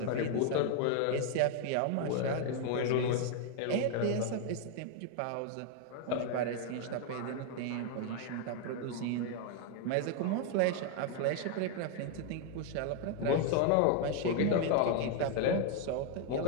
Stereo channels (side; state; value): both; different; correlation 0.00